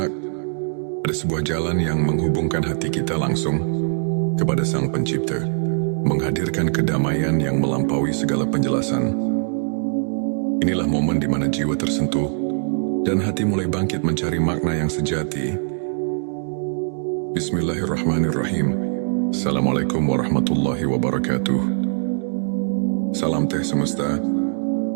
ada sebuah jalan yang menghubungkan hati kita langsung kepada Sang Pencipta, menghadirkan kedamaian yang melampaui segala penjelasan. Inilah momen di mana jiwa tersentuh dan hati mulai bangkit mencari makna yang sejati. Bismillahirrahmanirrahim. Assalamualaikum warahmatullahi wabarakatuh. Salam teh semesta,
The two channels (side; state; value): left; silent; digital silence